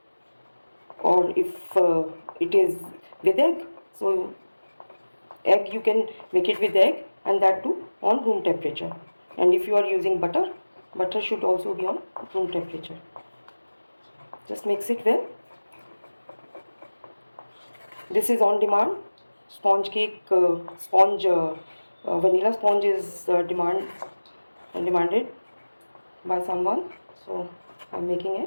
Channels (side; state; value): both; inverted; correlation -1.00